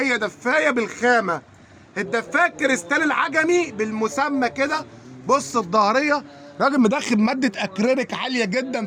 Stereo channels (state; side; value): identical; both; correlation 1.00